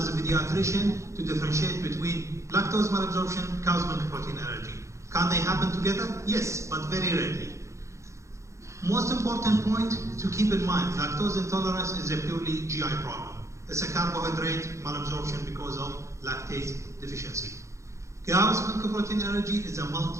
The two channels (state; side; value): late; left; 0.14 ms